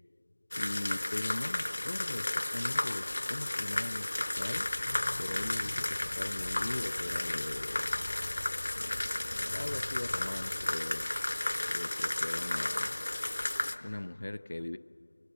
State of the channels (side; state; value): both; inverted; correlation -1.00